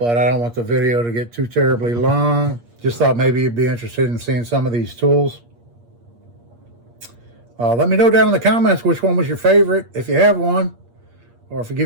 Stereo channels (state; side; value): late; left; 8.5 ms